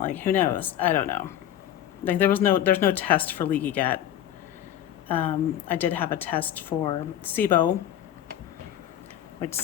who knows? I don't know. Like, there's no test for leaky gut. I did have a test for SIBO, which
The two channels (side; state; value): right; quieter; 11.2 dB